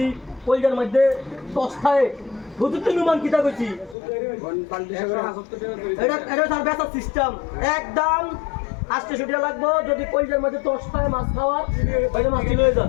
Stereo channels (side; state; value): right; drops out; at 4.0 s